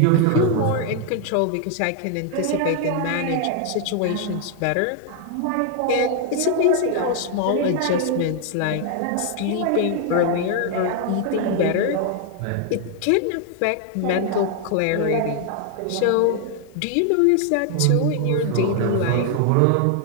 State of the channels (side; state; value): both; different; correlation 0.00